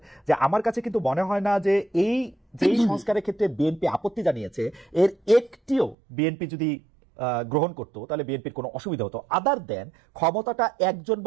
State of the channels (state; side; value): drops out; left; at 6.0 s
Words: যে আমার কাছে কিন্তু মনে হয় না যে এই যেই সংস্কারের ক্ষেত্রে বিএনপি আপত্তি জানিয়েছে এর একটিও বিএনপি যদি গ্রহণ করতো তাহলে বিএনপির কোনো অসুবিধা হতো, আদার দেন ক্ষমতাটা একজন